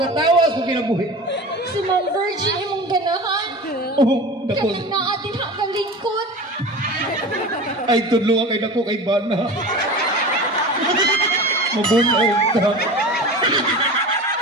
kung kinabuhi. Si Ma'am Virgin imong ganahan. Oh, dako. Kami na atin hakalingkod. Ay, tudlo kay dako kay Bana. Mabunaw ka.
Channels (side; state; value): both; normal; correlation 0.32